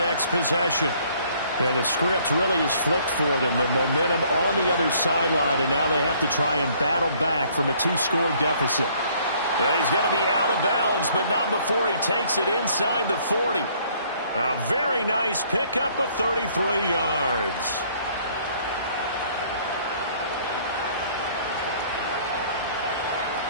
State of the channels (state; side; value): inverted; both; correlation -0.61